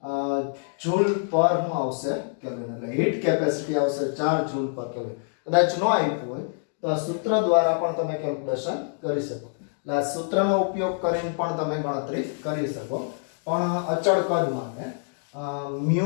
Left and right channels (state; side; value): silent; right; 61 dB below the other